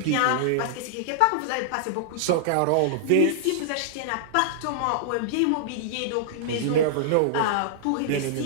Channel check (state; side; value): different; both; correlation -0.01